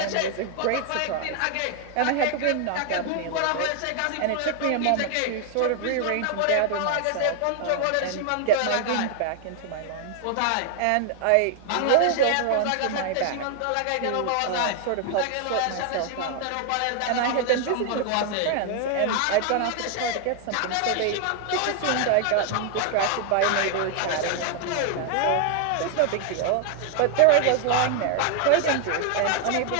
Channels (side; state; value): both; different; correlation 0.00